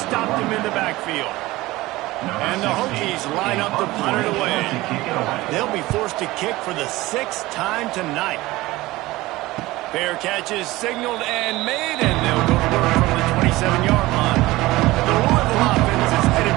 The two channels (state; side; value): quieter; left; 19.0 dB